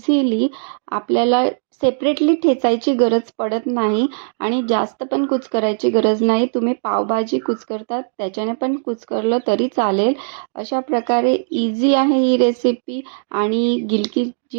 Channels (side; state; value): left; silent; digital silence